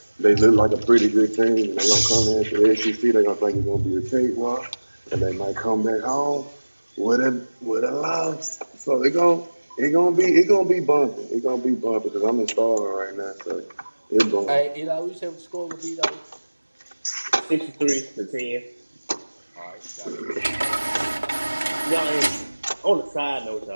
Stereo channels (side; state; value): both; inverted; correlation -1.00